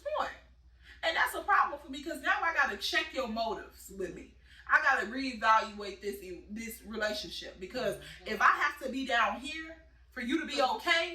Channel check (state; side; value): identical; both; correlation 1.00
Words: point. And that's a problem for me, because now I got to check your motives with me. I got to reevaluate this relationship, because if I have to be down here for you to be